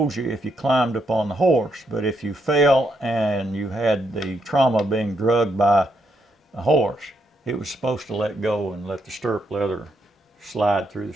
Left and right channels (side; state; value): both; normal; correlation 0.78